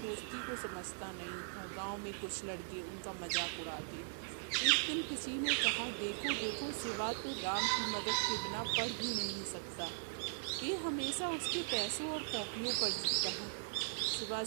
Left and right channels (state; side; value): silent; left; digital silence